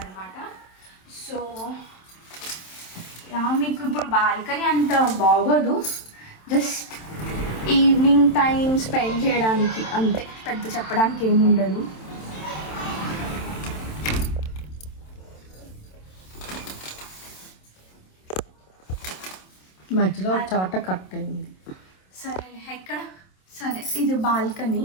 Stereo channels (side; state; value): right; late; 27 ms